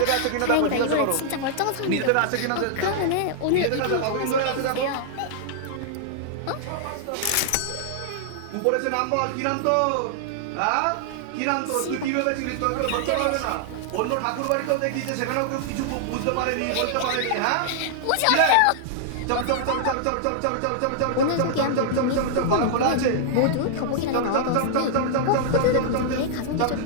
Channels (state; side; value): different; both; correlation -0.01